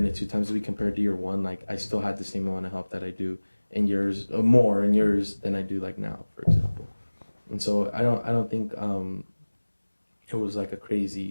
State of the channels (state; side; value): inverted; both; correlation -1.00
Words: it 2 times a week compared to year one. I still had the same amount of help that I do in yours, more in yours than I do now, for example. And so I don't think it was a